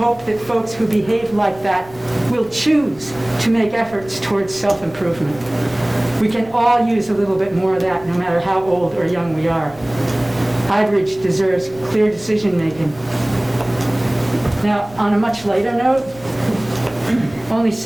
hope that folks who behave like that will choose to make efforts towards self-improvement. We can all use a little bit more of that, no matter how old or young we are. Highbridge deserves clear decision-making. Now, on a much lighter note, only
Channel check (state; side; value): noise; left; rumble, 22 dB below the sound